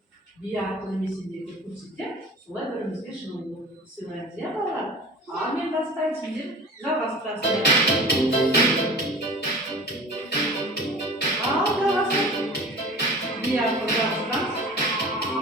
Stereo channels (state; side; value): normal; both; correlation 0.40